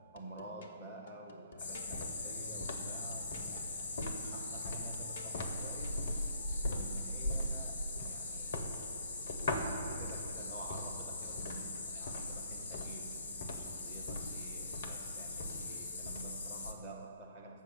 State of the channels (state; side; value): inverted; both; correlation -0.66